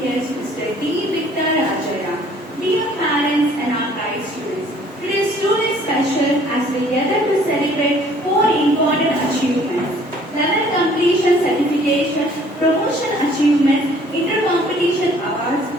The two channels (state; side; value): normal; both; correlation 0.57